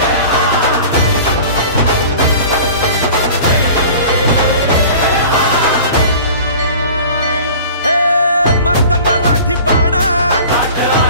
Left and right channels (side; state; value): both; inverted; correlation -0.41